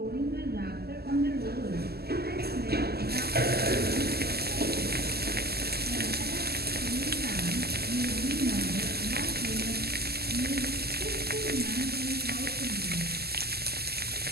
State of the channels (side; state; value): left; late; 0.46 ms